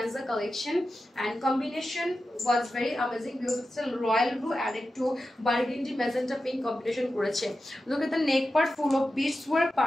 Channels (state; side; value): normal; both; correlation 0.91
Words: collection and combination was very amazing because it's royal blue and একটু বার্গেন্ডি ম্যাজেন্টা পিঙ্ক কম্বিনেশন করেছে। Look at the neck part full of beads work,